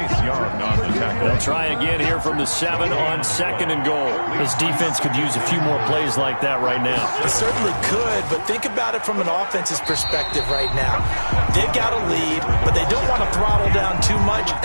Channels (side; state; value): both; inverted; correlation -1.00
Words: Young on the tackle. They'll try again here from the 7 on 2nd and goal. His defense could use a few more plays like that right now. It certainly could, but think about it from an offense's perspective right now. They've got a lead, but they don't want to throttle down too much